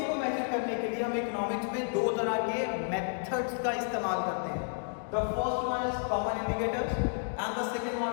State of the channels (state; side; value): silent; right; digital silence